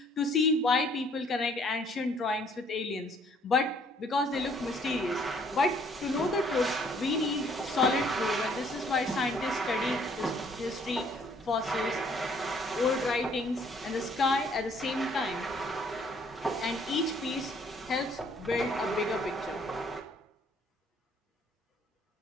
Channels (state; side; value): normal; both; correlation 0.62